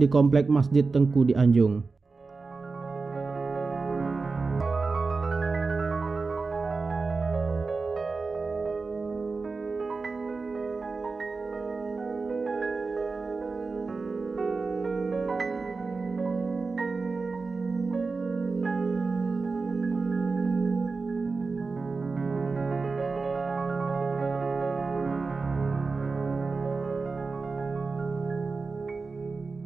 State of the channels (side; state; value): left; quieter; 4.2 dB